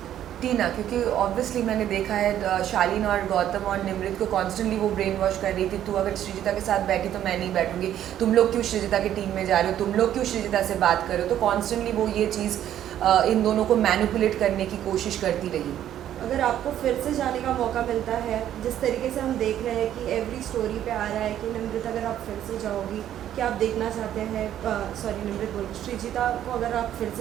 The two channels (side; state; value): left; quieter; 11.2 dB